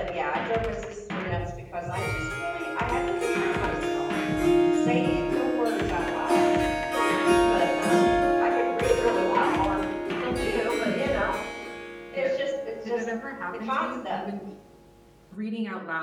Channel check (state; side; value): identical; both; correlation 1.00